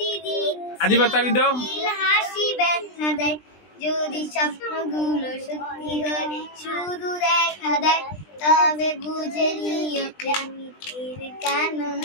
আদিবা তালি দাও। হাসি ব্যথা দেয়, যদি স্বপ্নগুলো সত্যি হয় শুধু দেখা দেয়, তবে বুঝে নিও প্রেমিকের কেন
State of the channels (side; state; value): right; late; 20 ms